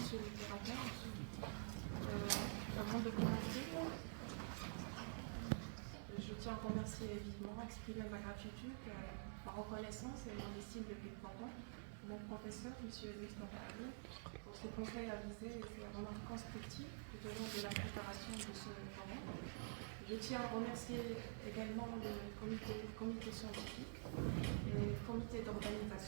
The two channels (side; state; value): left; silent; digital silence